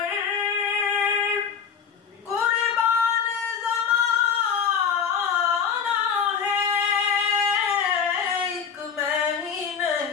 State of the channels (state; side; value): quieter; right; 6.9 dB